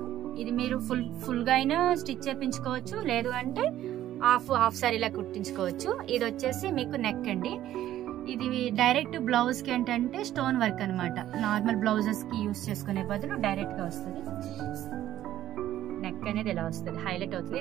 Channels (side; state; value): left; quieter; 12.9 dB